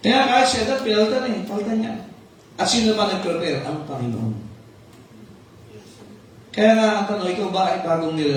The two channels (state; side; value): identical; both; correlation 1.00